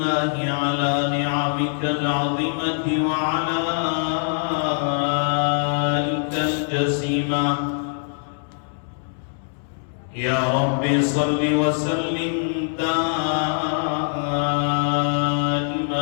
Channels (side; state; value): right; silent; digital silence